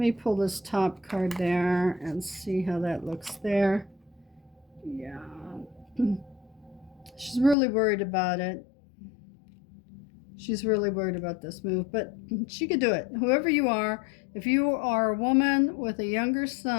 me pull this top card there and see how that looks there. Yeah. She's really worried about it. She's really worried about this move, but she could do it. Whoever you are, if you are a woman with a younger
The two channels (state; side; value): drops out; right; at 7.6 s